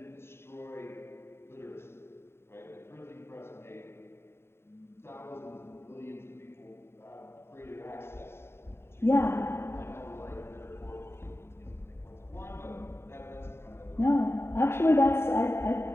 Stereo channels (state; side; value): late; right; 0.12 ms